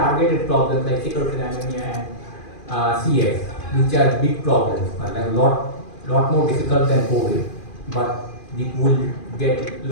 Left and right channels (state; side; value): late; right; 2.4 ms